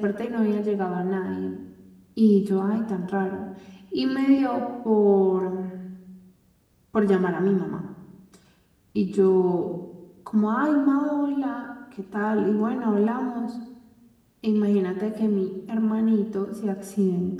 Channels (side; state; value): both; identical; correlation 1.00